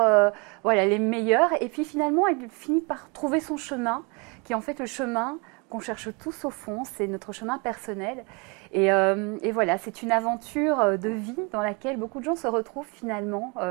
les meilleures. Et puis, finalement, elle finit par trouver son chemin, qui est en fait le chemin qu'on cherche tous au fond. C'est notre chemin personnel. Et voilà, c'est une aventure de vie dans laquelle beaucoup de gens se retrouvent finalement,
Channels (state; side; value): quieter; left; 31.0 dB